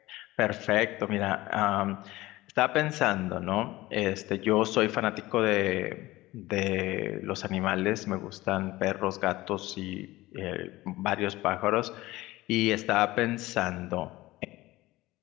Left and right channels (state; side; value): quieter; right; 18.4 dB